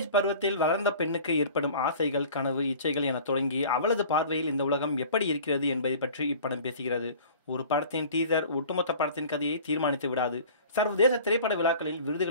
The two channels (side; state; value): both; inverted; correlation -0.44